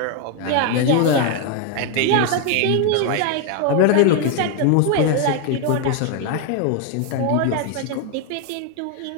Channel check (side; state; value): both; different; correlation 0.01